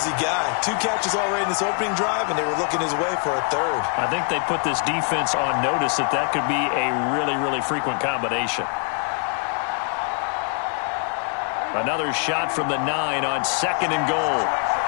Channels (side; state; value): right; quieter; 39.6 dB